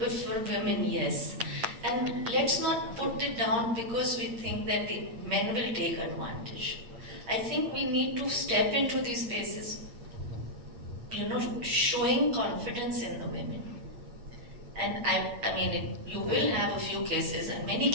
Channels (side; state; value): left; late; 8.7 ms